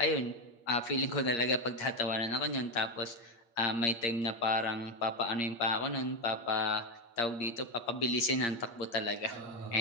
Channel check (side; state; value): right; late; 8.6 ms